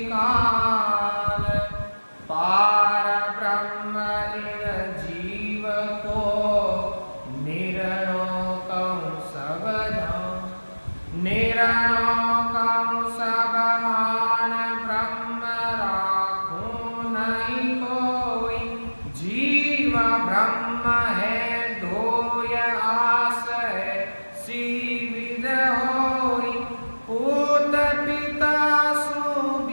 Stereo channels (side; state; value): both; inverted; correlation -1.00